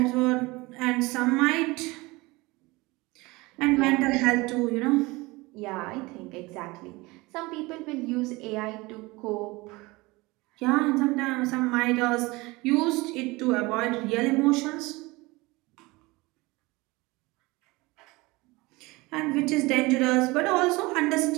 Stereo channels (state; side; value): quieter; left; 22.8 dB